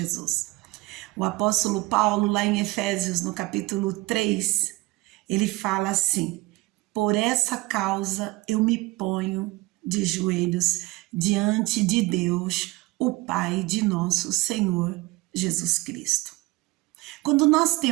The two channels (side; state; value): left; quieter; 21.4 dB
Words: O apóstolo Paulo, lá em Efésios, no capítulo 3, ele fala assim: por essa causa eu me ponho de joelhos diante de Deus, o Pai de nosso Senhor Jesus Cristo. Quando nós